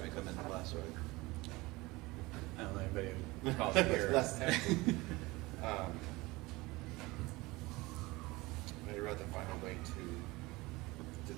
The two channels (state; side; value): quieter; left; 21.9 dB